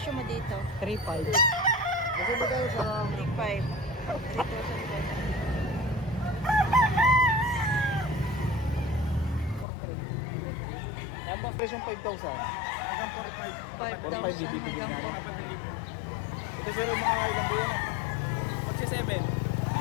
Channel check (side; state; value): right; drops out; at 9.7 s